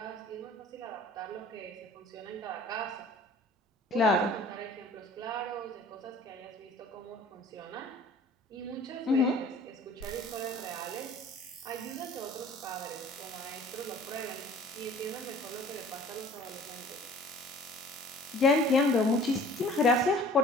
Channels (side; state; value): both; normal; correlation 0.48